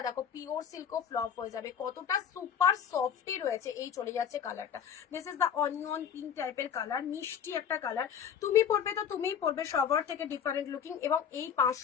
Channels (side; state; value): right; quieter; 8.1 dB